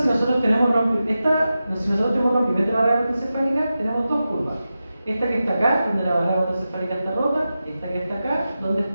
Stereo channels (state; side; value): inverted; both; correlation -0.92